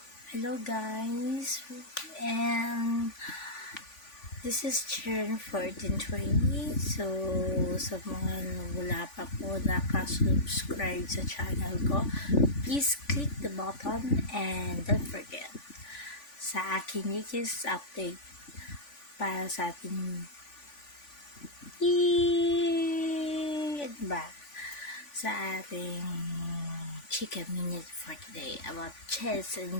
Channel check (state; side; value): late; right; 3.5 ms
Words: guys, and this is Chern 1420. So, sa mga wala pa po nakasubscribe sa channel ko, please click the button and don't forget sa aking latest update para sa ating sa ating chika minute for today about chess and